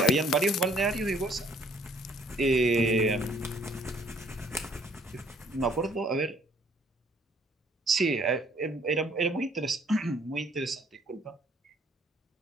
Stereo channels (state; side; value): normal; both; correlation 0.61